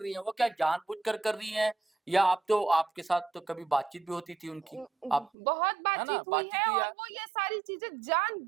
है वो? क्या जानबूझकर कर रही है, या आप तो आपके साथ तो कभी बातचीत भी होती थी उनकी, आप, बहुत है ना, बातचीत हुई बातचीत है, हुई और है? वो ये सारी चीजें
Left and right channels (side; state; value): left; drops out; at 5.3 s